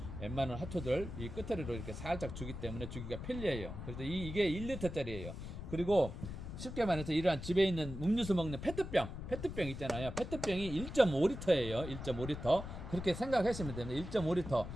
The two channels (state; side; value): noise; left; rumble, 8 dB below the sound